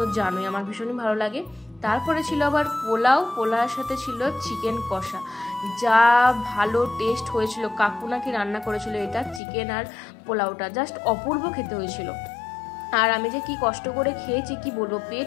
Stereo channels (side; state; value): right; drops out; at 9.4 s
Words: তো জানোই, আমার ভীষণই ভালো লাগে। তারপরে ছিল আবার পোলাওর সাথে ছিল চিকেন কষা, যা ভালো টেস্ট হয়েছিল। কাকু নাকি রান্না করেছিল এটা, চিকেন আর পোলাওটা জাস্ট অপূর্ব খেতে হয়েছিল। আর আমি যে কি কষ্ট করে খেয়েছি কি বলবো,